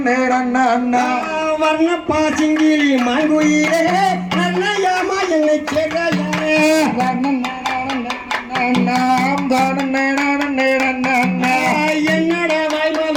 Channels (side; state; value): both; identical; correlation 1.00